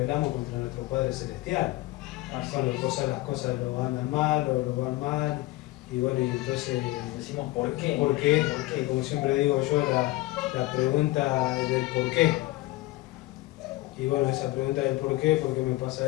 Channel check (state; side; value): quieter; right; 18.9 dB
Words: contra nuestro Padre Celestial. Cuando las cosas lo andan mal o lo van mal, y bueno, y entonces decimos ¿por qué? ¿Por qué? Porque como siempre digo yo, la pregunta del por qué. Y bueno, esa pregunta del por qué me